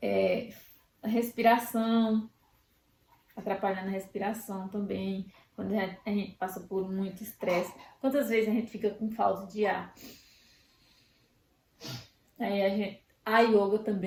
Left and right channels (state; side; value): identical; both; correlation 1.00